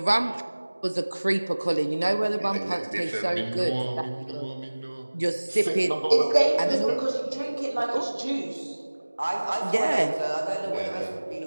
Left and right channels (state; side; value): inverted; both; correlation -1.00